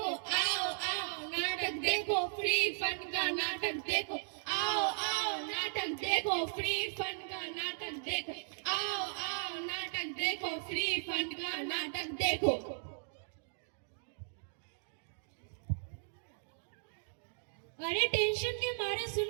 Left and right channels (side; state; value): left; silent; digital silence